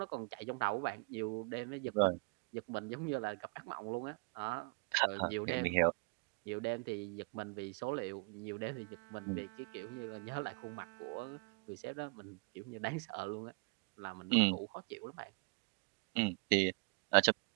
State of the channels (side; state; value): left; quieter; 32.7 dB